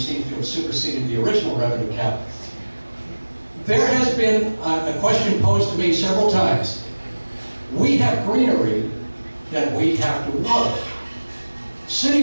to have superseded the original revenue cap. There has been a question posed to me several times. We have greenery that we have to water.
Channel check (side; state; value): both; inverted; correlation -1.00